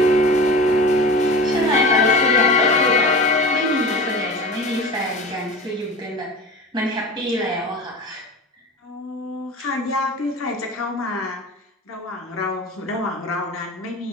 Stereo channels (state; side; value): normal; both; correlation 0.34